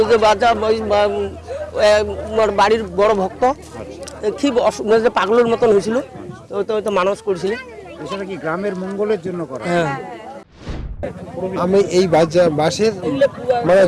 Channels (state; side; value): identical; both; correlation 1.00